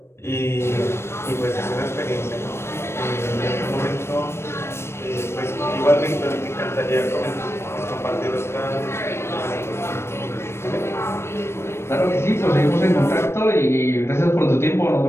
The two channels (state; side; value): late; right; 0.12 ms